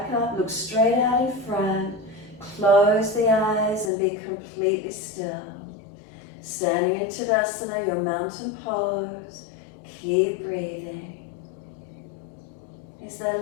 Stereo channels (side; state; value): right; drops out; at 3.9 s